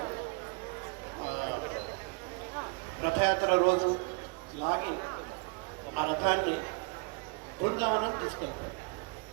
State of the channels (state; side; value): quieter; left; 33.1 dB